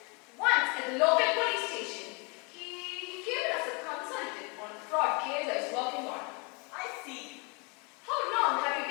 Once at the local police station, he came in as a consultant on a fraud case I was working on. I see. How long have you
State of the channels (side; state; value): right; quieter; 31.6 dB